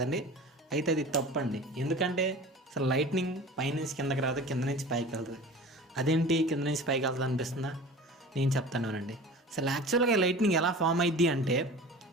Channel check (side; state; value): both; normal; correlation 0.38